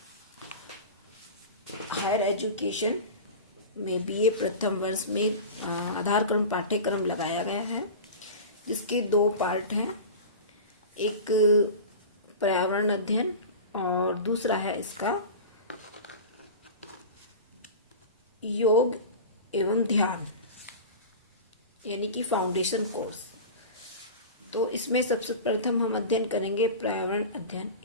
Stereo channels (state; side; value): inverted; both; correlation -0.31